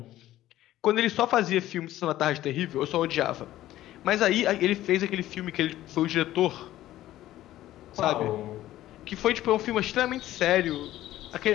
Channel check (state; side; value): quieter; right; 14.3 dB